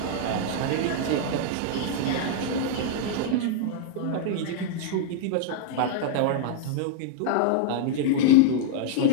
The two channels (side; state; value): both; different; correlation -0.01